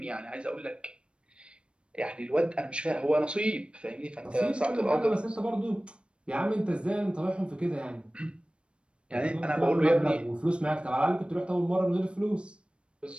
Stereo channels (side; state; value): left; late; 0.057 ms